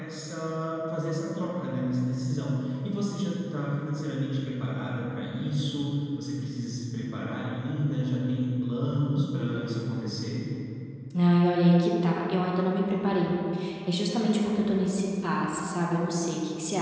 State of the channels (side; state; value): both; identical; correlation 1.00